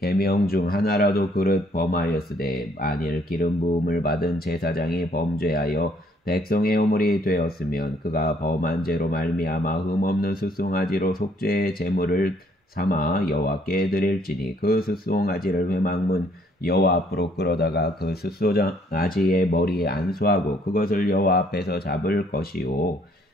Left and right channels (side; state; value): both; normal; correlation 0.65